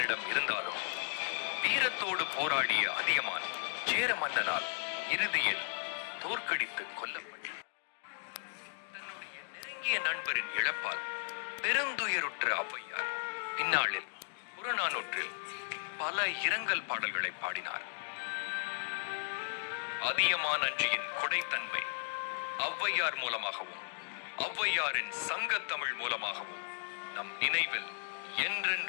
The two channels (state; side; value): silent; right; digital silence